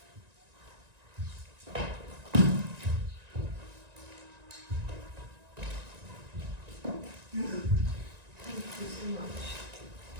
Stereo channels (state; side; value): late; left; 1.9 ms